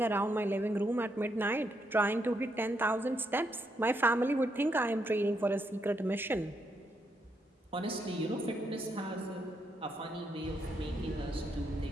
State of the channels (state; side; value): normal; both; correlation 0.78